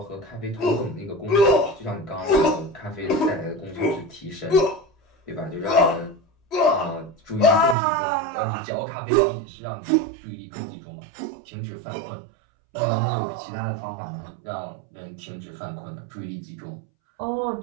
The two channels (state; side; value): drops out; left; at 7.8 s